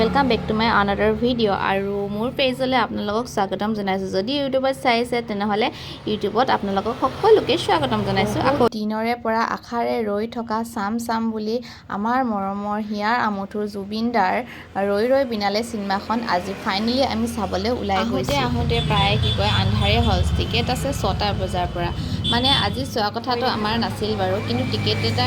back to my another video. আৰু মোৰ পেজলৈ আপোনালোকক স্বাগতম জনাইছো। যদি ইউটিউবত চাইছে তেনেহলে ইউটিউবত আপোনালোকক সকলোকে স্বাগতম জনাইছো। আকৌ দিনৰে পৰা আখাৰে ৰৈ থকা চাম বুলি আমাৰ মৰমৰ হিয়াৰ আমঠুৰ জুবিনদাৰ ৰৈ বিনালে চিনেমাখন আজি ফাইনেলি আমি চাবলৈ ওলাই গৈছো। আহোঁতে প্ৰায় কি কয় আন্ধাৰে হ'ল। টিকেট আছে 6টা বজাৰ পৰা। মানে আজি চোৱা কথাটো আমাৰ নাছিল বাৰু, কিন্তু টিকেট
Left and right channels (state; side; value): identical; both; correlation 1.00